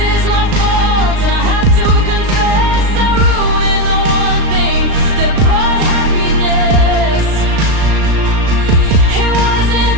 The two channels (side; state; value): left; late; 36 ms